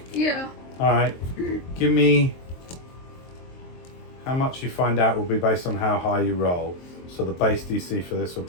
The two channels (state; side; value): late; right; 23 ms